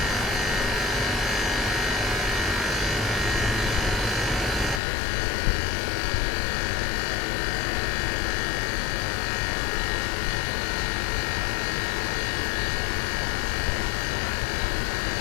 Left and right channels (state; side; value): drops out; right; at 4.8 s